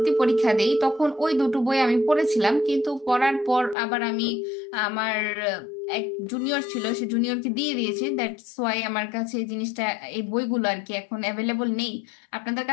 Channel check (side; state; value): right; drops out; at 3.8 s